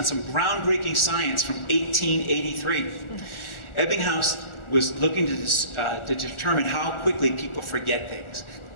some groundbreaking science from 1883. Ebbinghaus was looking to determine how quickly people forget things.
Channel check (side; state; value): right; late; 1.4 ms